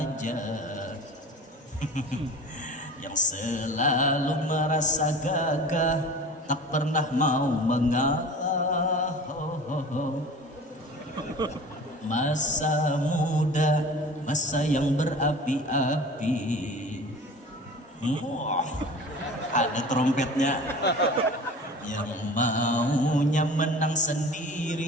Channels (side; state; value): both; normal; correlation 0.39